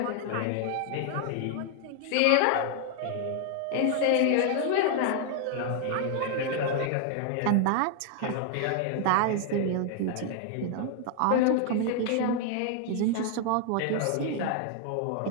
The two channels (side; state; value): both; different; correlation 0.00